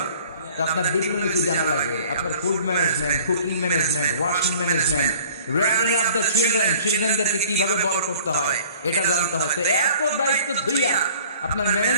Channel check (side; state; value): both; inverted; correlation -0.51